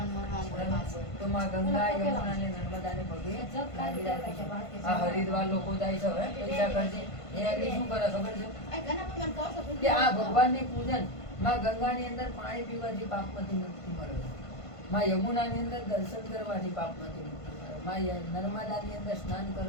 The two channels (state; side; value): late; right; 1.5 ms